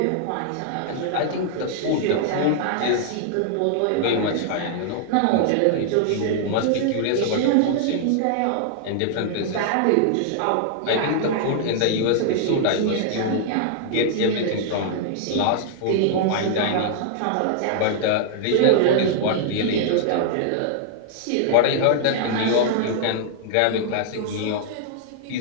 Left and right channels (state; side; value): different; both; correlation -0.01